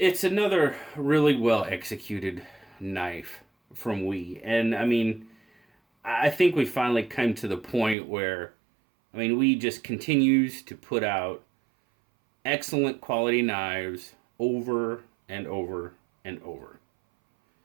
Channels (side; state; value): left; drops out; at 8.0 s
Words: another really well executed knife from WE. And I mean, I think we finally come to the point where, I mean, WE just continues to put out excellent quality knives over and over and over.